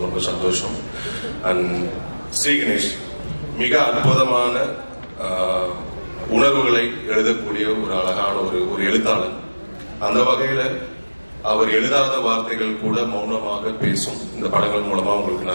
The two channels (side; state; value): both; inverted; correlation -1.00